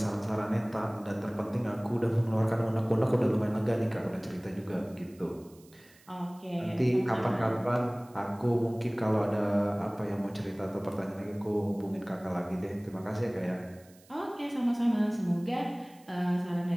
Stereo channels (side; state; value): right; noise; hiss, 27 dB below the sound